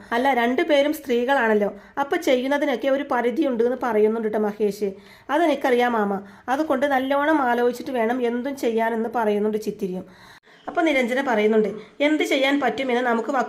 അല്ല രണ്ടുപേരും സ്ത്രീകളാണല്ലോ, അപ്പം ചെയ്യുന്നതിനൊക്കെ ഒരു പരിധിയുണ്ട് എന്ന് പറയുന്നുണ്ട് മഹേഷ്. അതെനിക്കറിയാം മാമ, അതുകൊണ്ട് നല്ലോണം ആലോചിച്ചിട്ട് വേണം എന്തും ചെയ്യാനെന്ന് പറയുന്നുണ്ട് ചിത്തിരിയും. അപ്പോൾ നിരഞ്ജന പറയുന്നുണ്ട്, എന്ത് ചെയ്യാൻ പറ്റുമെന്ന് നമുക്ക്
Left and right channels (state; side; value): identical; both; correlation 1.00